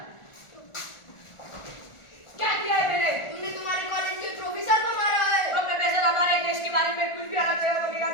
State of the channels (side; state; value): right; late; 1.4 ms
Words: हमारे देश के बारे में कुछ भी अलग बगेगा